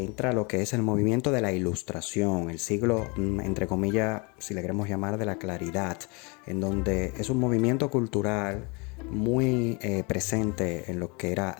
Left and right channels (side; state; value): right; quieter; 30.0 dB